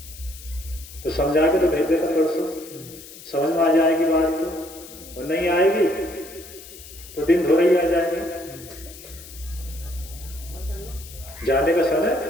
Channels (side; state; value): left; noise; hiss, 17 dB below the sound